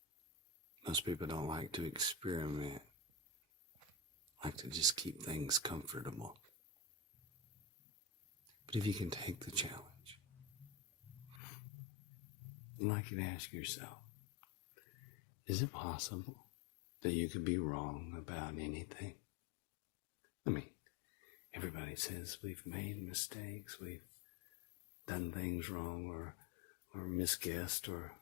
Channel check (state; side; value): drops out; right; at 11.4 s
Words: Most people don't like to experiment, like to just keep things comfortable. But if you can take the challenge, I'd like you to ask yourself, is it possible that you could be wrong about anything? I mean, everybody says we've made mistakes, we've done things wrong or misguessed or